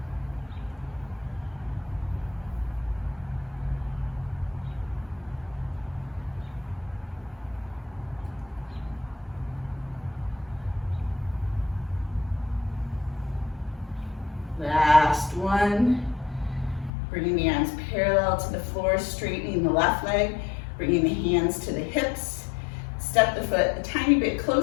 Last one. Bringing the arms parallel to the floor, straightening the left leg, bringing the hands to the hips. Step the foot a tiny bit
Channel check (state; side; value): drops out; right; at 16.9 s